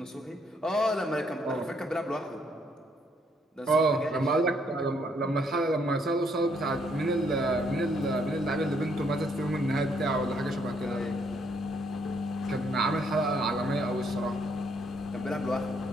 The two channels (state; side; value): normal; both; correlation 0.70